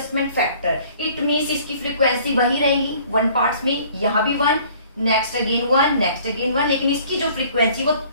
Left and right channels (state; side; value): inverted; both; correlation -0.54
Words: फैक्टर। इट मीन्स इसकी फ्रीक्वेंसी वही रहेगी 1 पार्ट्स में, यहां भी 1, नेक्स्ट अगेन 1, नेक्स्ट अगेन 1, लेकिन इसकी जो फ्रीक्वेंसी वो